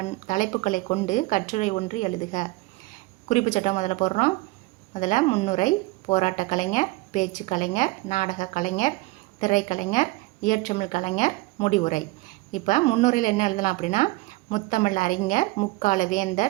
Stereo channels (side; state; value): left; quieter; 21.1 dB